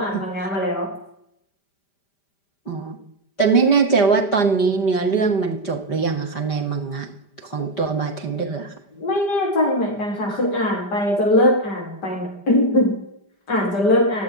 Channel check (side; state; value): right; late; 5.0 ms